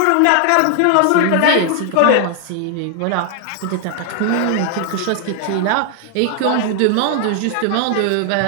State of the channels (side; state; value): both; different; correlation 0.00